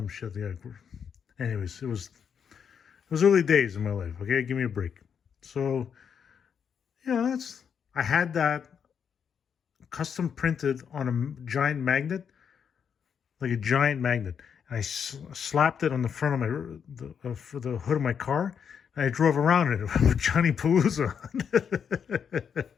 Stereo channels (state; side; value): quieter; right; 7.3 dB